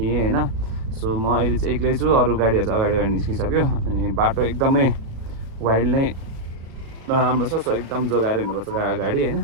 होइन। सो म अहिले चाहिँ एक्लै छु, अरू गाडीहरू चाहिँ अगाडि निस्किसक्यो। अनि बाटो एकदमै वाइल्ड नै नराम्रो छ। सो एकदम जोगाएर हिँड्नुपर्छ गाडी होइन।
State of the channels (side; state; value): left; late; 36 ms